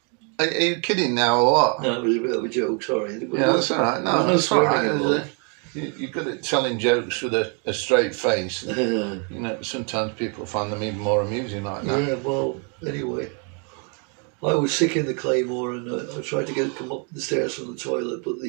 Are you kidding now or what? no, it was a bit of a joke, sorry. Yeah, that's all right. No, that's all right. You're good at telling jokes with a straight face. You know, sometimes people find them even more amusing like that. Yeah, well, anyway. I was sick in the Claymore and I tried to come up the stairs from the toilet, but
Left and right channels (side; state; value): left; quieter; 37.6 dB